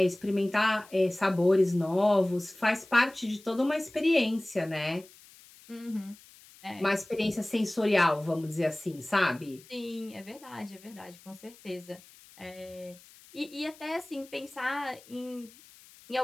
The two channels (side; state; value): left; noise; hiss, 23 dB below the sound